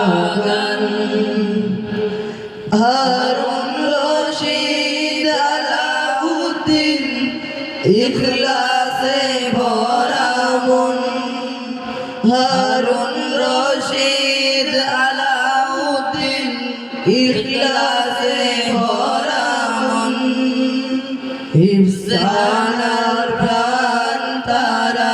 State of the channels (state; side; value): identical; both; correlation 1.00